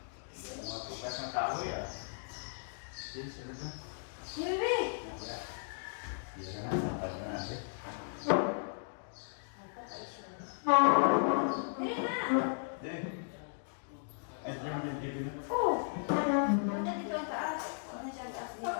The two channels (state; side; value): silent; right; digital silence